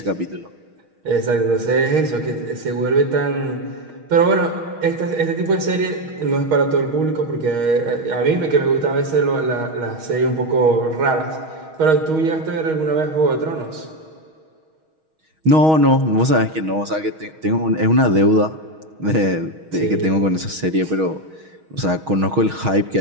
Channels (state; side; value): late; left; 6.3 ms